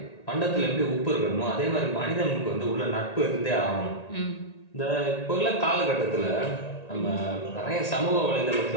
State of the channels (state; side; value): late; right; 1.9 ms